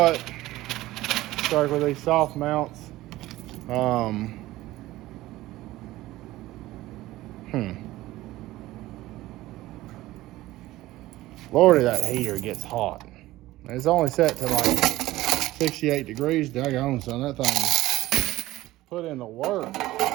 start with these soft mounts. Lordy, that heater gets hot. It's only set to like 68 degrees. Daggone, son, that thing put in the work.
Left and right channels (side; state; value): left; quieter; 16.9 dB